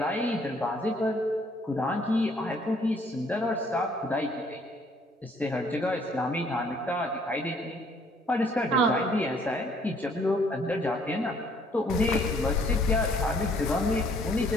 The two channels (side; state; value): both; normal; correlation 0.62